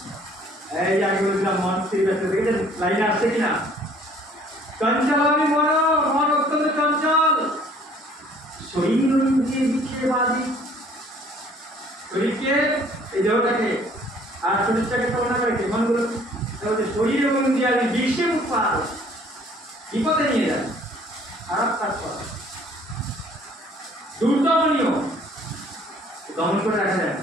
এই যে আগে বলছিলাম মন স্থির ব্যস্ত, দেখেছেন লাইনে আসছে কিনা? চঞ্চলামি মন, মন অত্যন্ত চঞ্চল। শরীর ইন্দ্রিয় বিক্ষেপবাদী, শরীরকে এই দেহটাকে আর শরীরটাকে তুলনা করে মনগুলো শরীর এবং ইন্দ্রিয়াদি বিশ্বে উৎপাদ বিপদে নিয়ে যায়, খারাপ কাজ করা, দুর্দমনীয়, দমন করে রাখা যায়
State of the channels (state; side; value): normal; both; correlation 0.56